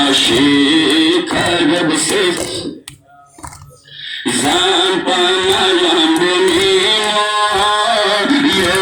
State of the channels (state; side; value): identical; both; correlation 1.00